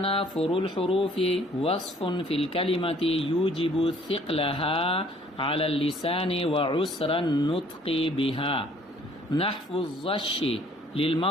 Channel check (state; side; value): normal; both; correlation 0.58